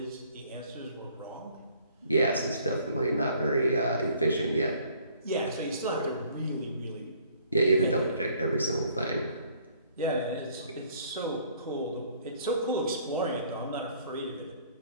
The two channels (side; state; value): both; inverted; correlation -0.59